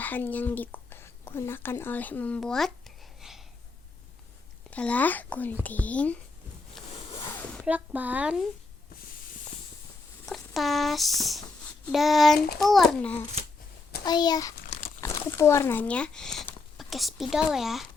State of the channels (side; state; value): right; quieter; 3.7 dB